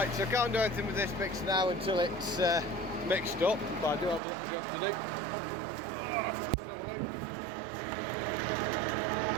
so I can't do anything with this mix now until it's mixed up, but I do have a little job to do.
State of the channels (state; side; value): drops out; left; at 4.2 s